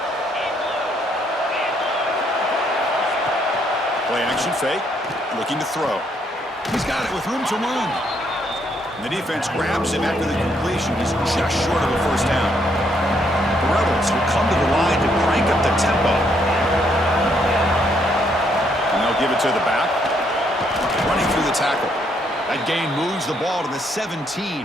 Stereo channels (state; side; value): normal; both; correlation 0.72